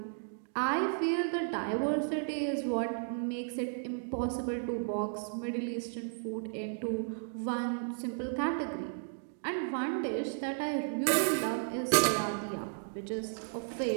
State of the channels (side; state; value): left; silent; digital silence